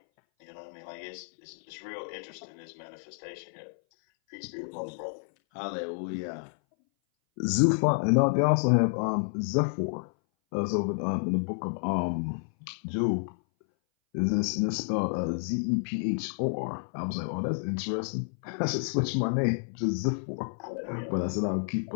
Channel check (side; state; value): right; silent; 58 dB below the other